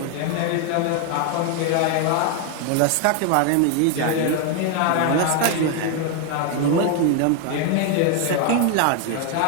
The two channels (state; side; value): different; both; correlation 0.01